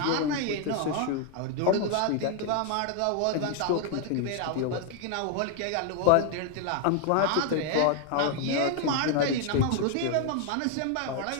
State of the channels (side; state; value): both; different; correlation 0.00